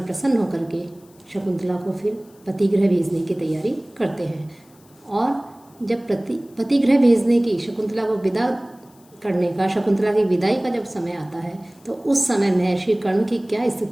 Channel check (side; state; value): left; noise; hiss, 30 dB below the sound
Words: प्रसन्न होकर के शकुंतला को फिर पतिगृह भेजने की तैयारी करते हैं। और जब पतिगृह भेजने की शकुंतला को विदा करने का, शकुंतला की विदाई का जब समय आता है, तो उस समय महर्षि कर्ण की क्या